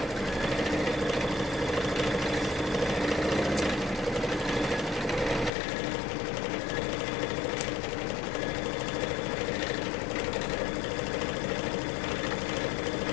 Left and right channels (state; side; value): drops out; right; at 5.5 s